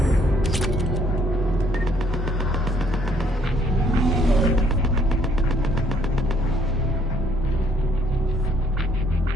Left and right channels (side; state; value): both; normal; correlation 0.65